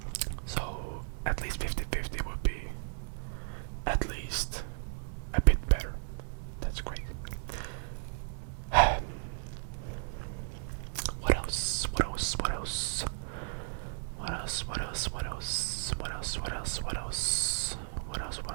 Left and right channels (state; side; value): silent; left; digital silence